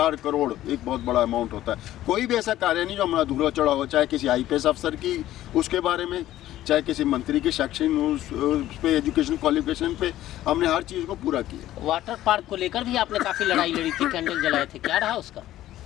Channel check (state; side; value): quieter; right; 14.0 dB